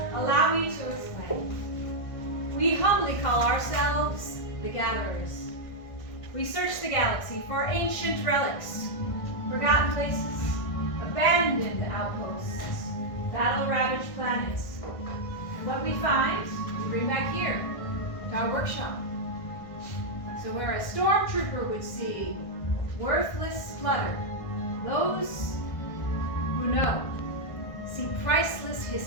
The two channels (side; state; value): right; late; 1.6 ms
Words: Allow me to explain. We humbly call ourselves the Gatherers. We search the galaxy for ancient relics, forgotten places, abandoned outposts, battle-ravaged planets. And what we find, we bring back here, to our workshop. So where a stormtrooper would see worthless clutter, those who know see priceless